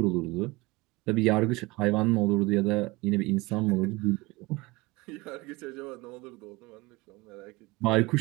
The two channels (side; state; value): left; quieter; 22.6 dB